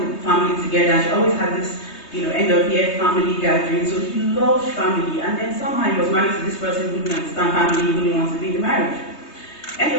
family together. She always had this, end of year family gathering. So he loved family. And then somehow he was married to this person who didn't understand family, who didn't want to be in the marriage.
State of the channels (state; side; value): late; right; 3.2 ms